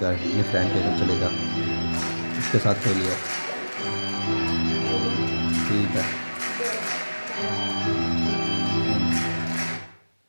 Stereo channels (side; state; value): both; inverted; correlation -1.00